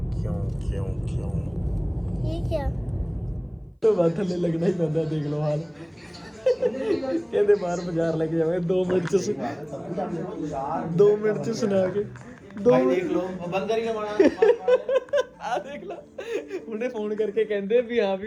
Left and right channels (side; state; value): both; identical; correlation 1.00